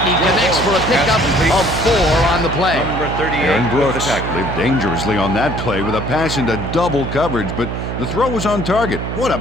he connects for a pickup of 4 on the play. Number 38. Aaron Brooks lived dangerously on that play with a pass into double coverage, but the throw was on target. What a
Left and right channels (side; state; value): right; noise; hum, 5 dB below the sound